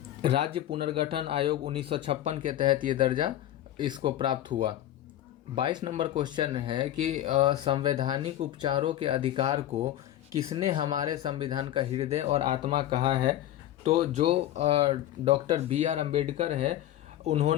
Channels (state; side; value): quieter; right; 12.8 dB